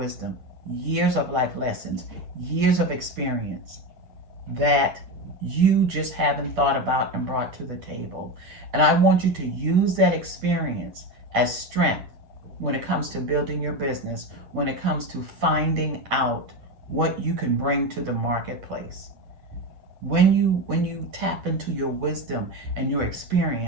years of life lessons, years of experience that you just haven't thought about and brought to the table. And I want you to use that experience as strength when it comes to building your business, when it comes to finding out what you can bring to the marketplace. When you tap into your wisdom and your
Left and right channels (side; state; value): left; late; 8.9 ms